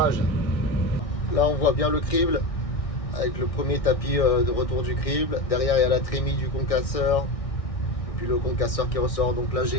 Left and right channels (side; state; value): right; late; 1.6 ms